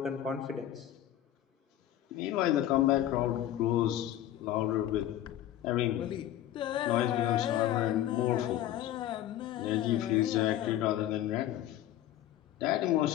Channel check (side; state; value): right; quieter; 12.5 dB